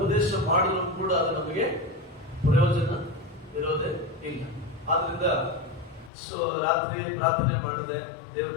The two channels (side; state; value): right; drops out; at 6.1 s